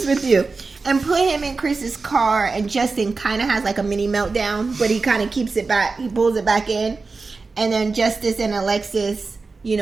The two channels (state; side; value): quieter; left; 4.1 dB